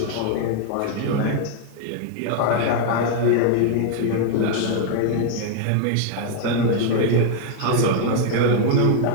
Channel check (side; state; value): both; different; correlation 0.00